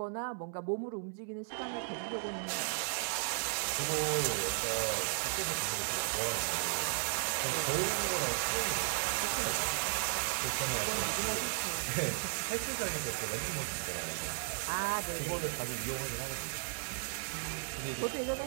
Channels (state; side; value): silent; left; digital silence